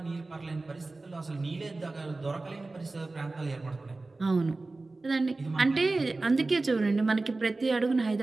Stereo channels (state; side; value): quieter; left; 3.3 dB